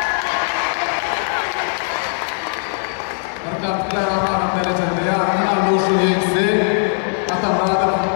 Kartlar aman derecede ya aman boşu yekse atamradım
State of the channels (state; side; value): silent; right; digital silence